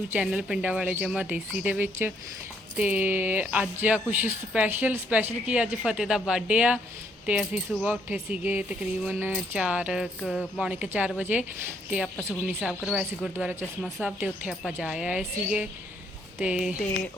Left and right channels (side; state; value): both; normal; correlation 0.70